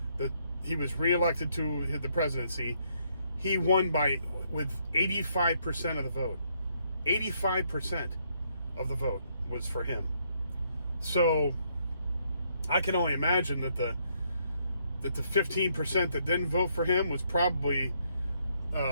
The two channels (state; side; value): inverted; both; correlation -0.72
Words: that he was reelected to the presidency, he won with 85% of the vote. 85% of the vote was for him. So I can only imagine that the 15% that didn't vote for him was probably